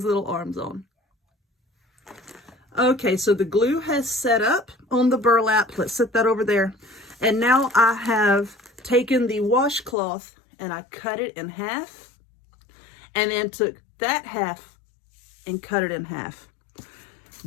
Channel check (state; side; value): drops out; right; at 10.0 s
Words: little arms on. Okay, so the glue has set up on the burlap. Let's set that over there. And now I have taken the washcloth and I cut it in half. And then took that half and cut it in half.